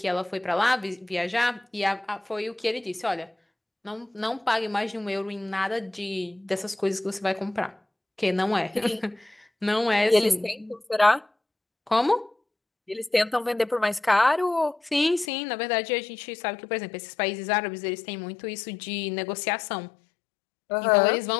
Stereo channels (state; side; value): drops out; right; at 15.3 s